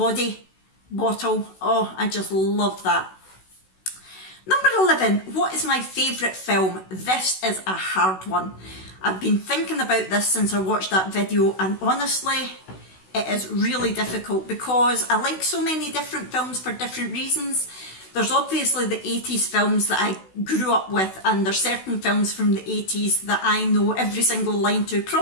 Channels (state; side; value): late; right; 16 ms